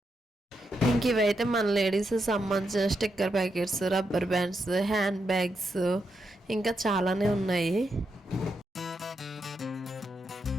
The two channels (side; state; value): both; normal; correlation 0.83